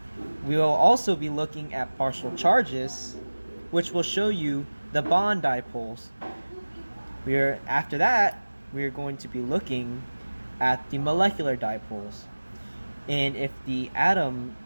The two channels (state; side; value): inverted; both; correlation -1.00